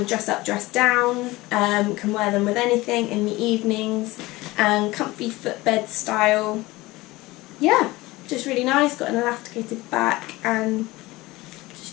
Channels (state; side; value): quieter; right; 20.0 dB